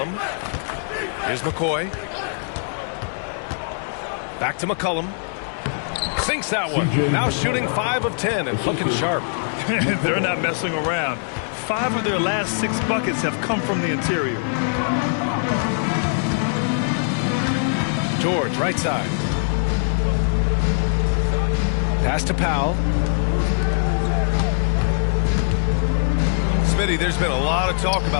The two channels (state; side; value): silent; right; 64 dB below the other